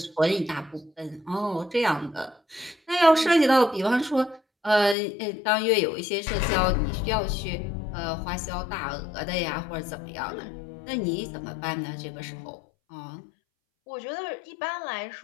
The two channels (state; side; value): drops out; right; at 5.0 s